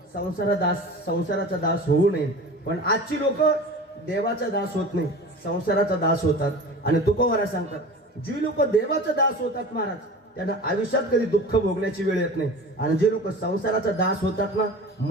संसाराचा दास होऊ नये. पण आजची लोक देवाचा दास होत नाही, संसाराचा दास होतात. आणि तुकोबारा सांगतात, जी लोक देवाचा दास होतात महाराज, त्यांना आयुष्यात कधी दुःख भोगण्याची वेळ येत नाही. आणि जे लोक संसाराचा दास होतात ना,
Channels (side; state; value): both; normal; correlation 0.36